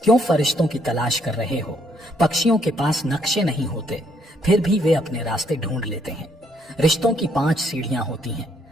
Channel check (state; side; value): normal; both; correlation 0.70